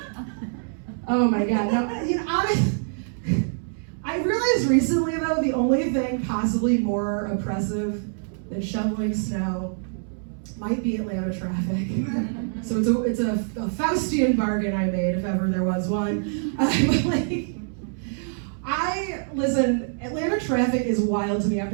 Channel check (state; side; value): silent; left; digital silence